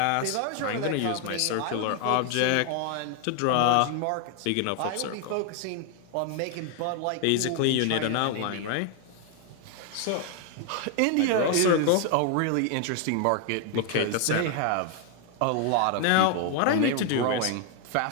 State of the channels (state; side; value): different; both; correlation 0.00